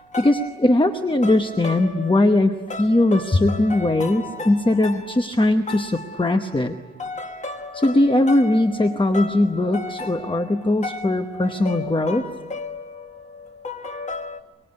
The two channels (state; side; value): normal; both; correlation 0.84